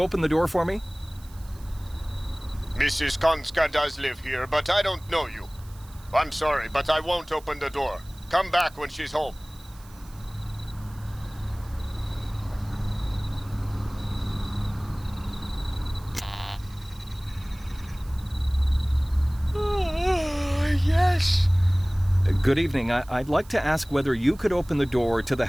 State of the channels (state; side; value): noise; right; hiss, 24 dB below the sound